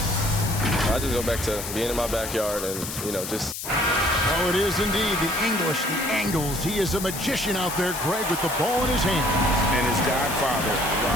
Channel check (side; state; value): left; noise; hiss, 7 dB below the sound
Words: I just go back to being in my backyard and, just... Oh, it is indeed the English, the angles. He is a magician out there, Greg, with the ball in his hands. And his godfather,